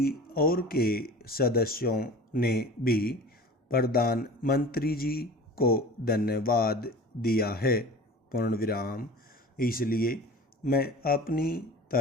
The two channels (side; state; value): both; normal; correlation 0.39